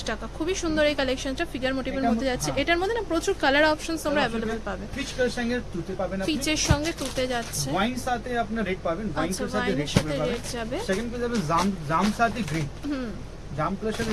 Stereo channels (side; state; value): both; identical; correlation 1.00